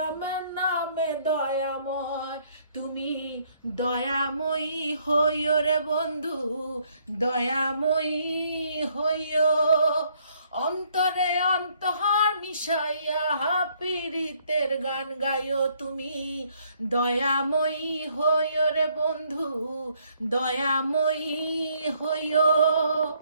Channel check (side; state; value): both; inverted; correlation -0.67